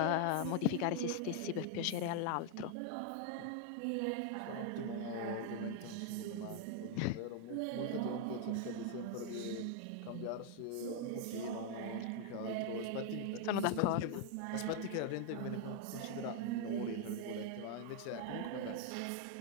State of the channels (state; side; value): different; both; correlation 0.00